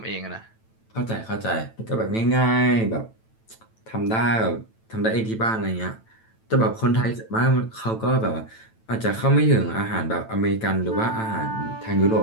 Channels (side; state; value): right; late; 9.0 ms